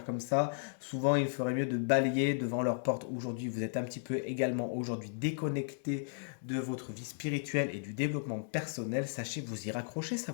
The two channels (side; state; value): right; silent; digital silence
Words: comme ça. Souvent, il ferait mieux de balayer devant leur porte. Aujourd'hui, vous êtes un petit peu également aujourd'hui déconnecté de votre vie spirituelle et du développement personnel. Sachez vous y raccrocher, ça